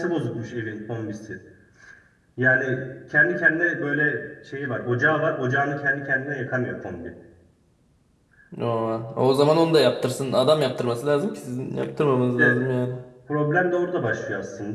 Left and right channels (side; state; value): both; identical; correlation 1.00